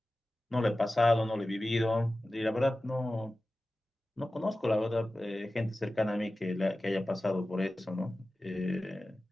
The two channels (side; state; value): both; normal; correlation 0.95